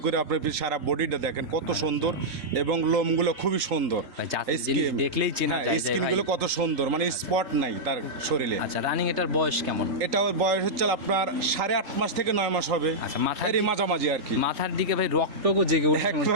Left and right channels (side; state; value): left; late; 3.9 ms